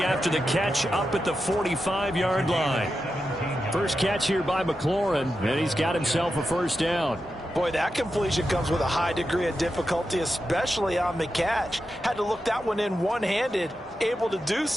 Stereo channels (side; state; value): both; normal; correlation 0.89